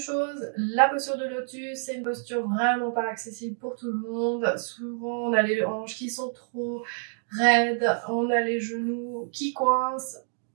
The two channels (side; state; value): left; silent; digital silence